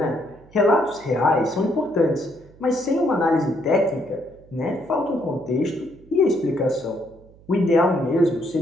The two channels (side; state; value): right; noise; hum, 25 dB below the sound